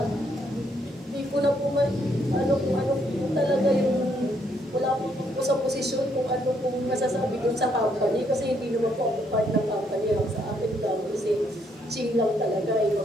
Hindi ko na po kung ano po talaga yung wala po sa posisyon kung ano pong masasabi dun sa company kasi hindi naman po ako part ng company lang sa akin lang kasi ching lang talaga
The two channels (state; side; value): normal; both; correlation 0.72